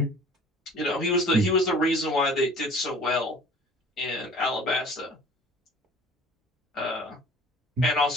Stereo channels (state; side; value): normal; both; correlation 0.48